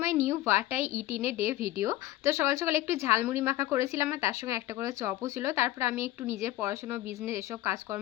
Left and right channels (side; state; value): right; quieter; 15.3 dB